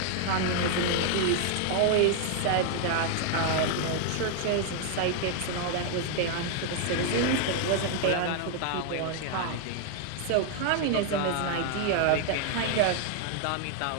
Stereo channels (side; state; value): both; different; correlation 0.00